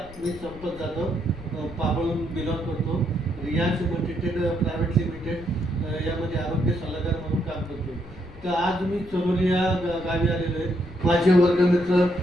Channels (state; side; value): noise; left; rumble, 18 dB below the sound